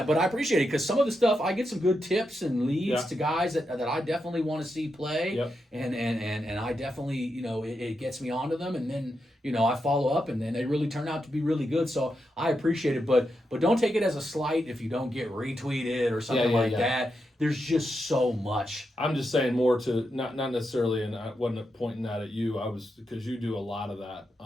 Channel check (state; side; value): normal; both; correlation 0.85